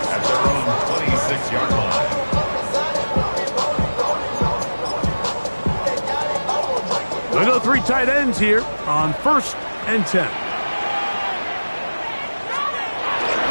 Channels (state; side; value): inverted; both; correlation -1.00